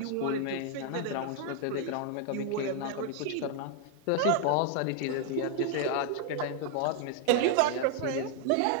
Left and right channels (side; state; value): both; different; correlation 0.00